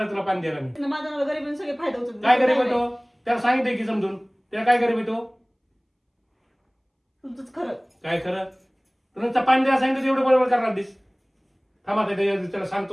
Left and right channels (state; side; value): identical; both; correlation 1.00